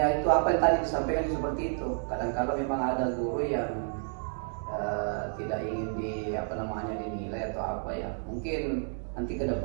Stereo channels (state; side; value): silent; left; digital silence